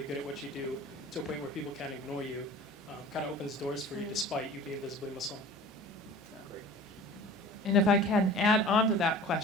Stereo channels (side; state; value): both; normal; correlation 0.42